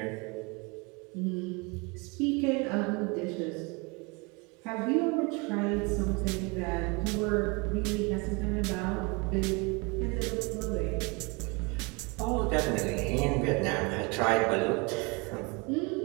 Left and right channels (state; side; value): quieter; left; 29.0 dB